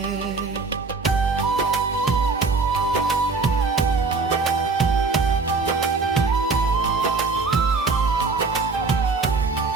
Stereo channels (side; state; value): left; quieter; 4.1 dB